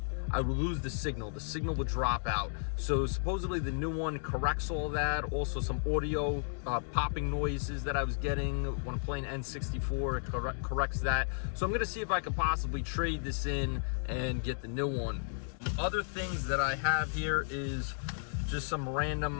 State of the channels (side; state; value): right; silent; digital silence